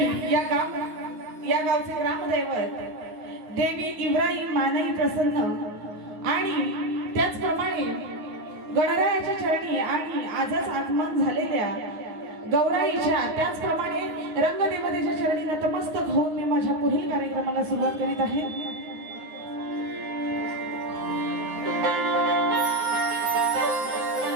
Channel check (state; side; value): late; left; 9.7 ms